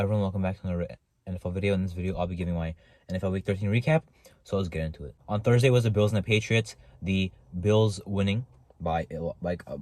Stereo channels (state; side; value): identical; both; correlation 1.00